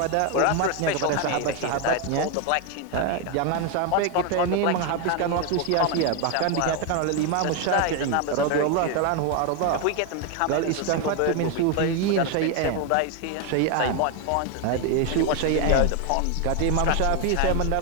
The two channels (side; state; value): both; different; correlation 0.01